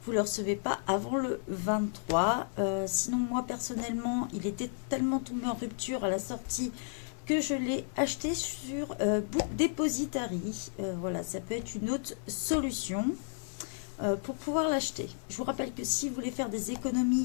vous ne le recevez pas avant le 23. Sinon, moi personnellement, il était tellement tombé en rupture à la sortie que je l'ai acheté sur Book Depository. Voilà, ça peut être une autre solution pour pouvoir l'acheter. Je vous rappelle que si vous voulez faire des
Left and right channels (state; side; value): silent; right; 56 dB below the other